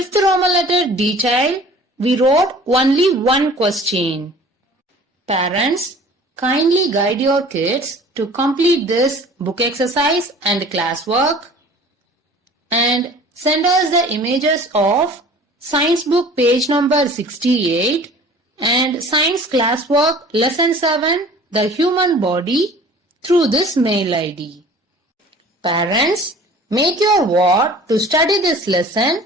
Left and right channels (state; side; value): normal; both; correlation 0.46